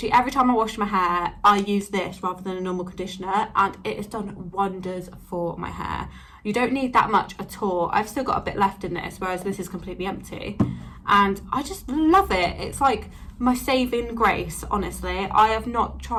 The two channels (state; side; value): identical; both; correlation 1.00